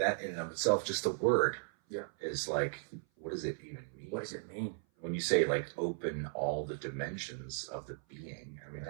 in and of itself, just the word, Yeah. is like, what does it even mean? What does it mean? When you say like open all the dimensions of the being, I mean,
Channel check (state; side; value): silent; left; 54 dB below the other